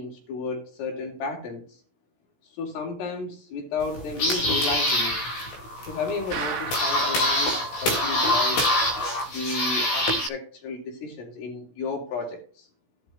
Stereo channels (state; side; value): late; right; 16 ms